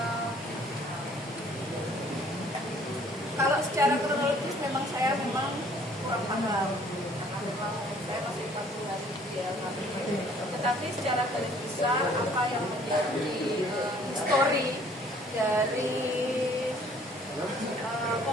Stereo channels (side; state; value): both; normal; correlation 0.57